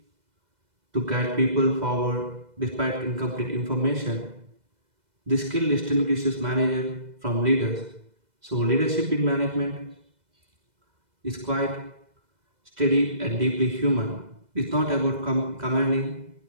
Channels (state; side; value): late; left; 2.0 ms